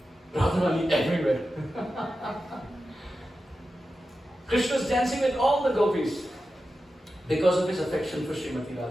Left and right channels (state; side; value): normal; both; correlation 0.92